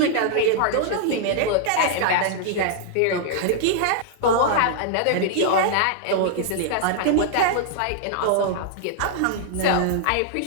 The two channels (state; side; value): different; both; correlation -0.01